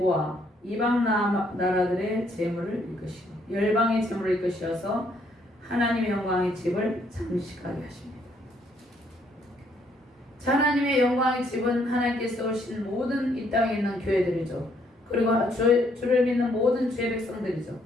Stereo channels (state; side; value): normal; both; correlation 0.69